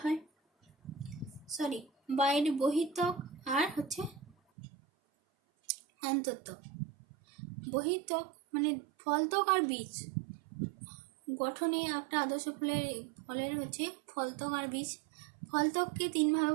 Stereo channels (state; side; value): drops out; left; at 4.4 s